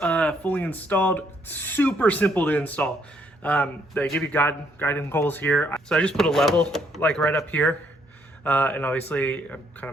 fully installed. Super simple to install. They give you guiding holes here. So I just put a level like right up here. And obviously I kind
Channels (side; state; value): both; normal; correlation 0.70